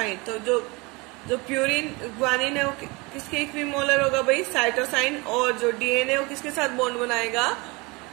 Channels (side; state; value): left; quieter; 26.2 dB